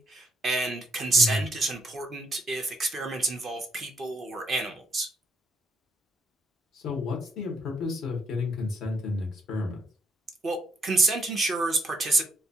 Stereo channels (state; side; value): normal; both; correlation 0.72